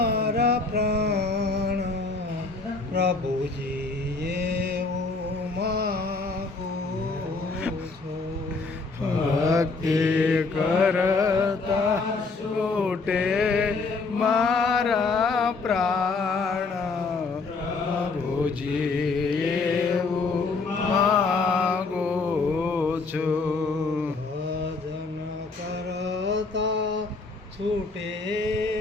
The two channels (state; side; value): quieter; right; 4.0 dB